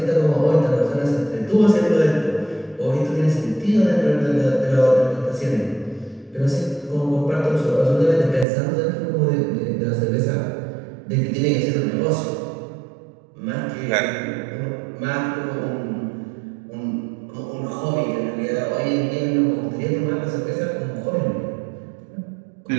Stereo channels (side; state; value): left; drops out; at 8.5 s